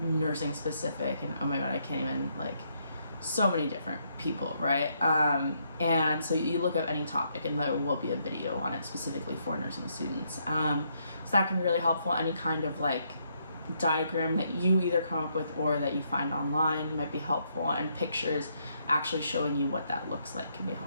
specific, and oh my god, I can't even, like, so many different people, right? And so you look up any topic and there will be a video on it specifically for nursing students. So that can be really helpful. Any kind of like diagram that you either come up with or that you find online might be helpful, and pictures actually showing you what that looks like can be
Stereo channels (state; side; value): inverted; both; correlation -0.74